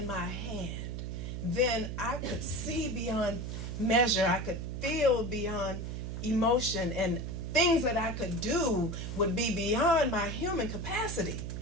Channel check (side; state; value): right; noise; hum, 5 dB below the sound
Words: my hand, then I could see beyond measure. I could feel beyond emotion, and things that I could do would be beyond my human capacity.